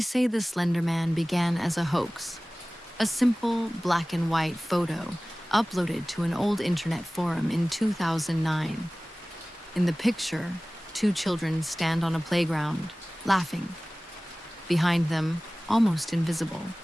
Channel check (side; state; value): both; normal; correlation 0.98